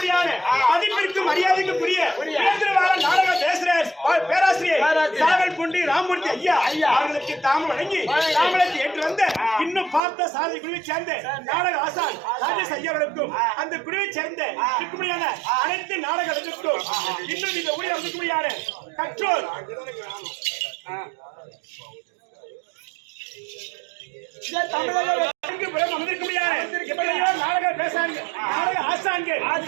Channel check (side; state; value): left; drops out; at 10.0 s